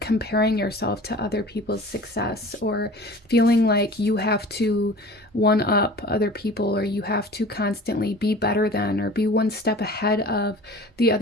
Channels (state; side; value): normal; both; correlation 0.41